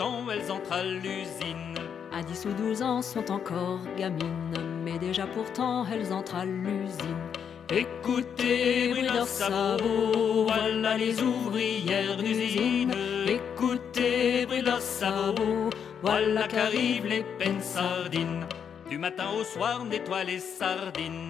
elles entrent à l'usine. À 10 ou 12 ans sont encore gamines, mais déjà pourtant elles entrent à l'usine. Écoutez, bruit de leurs sabots, voilà les ouvrières d'usine. Écoutez, bruit de leurs sabots, voilà qu'arrivent les peines sardines. Du matin au soir nettoient les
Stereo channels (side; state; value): right; quieter; 7.7 dB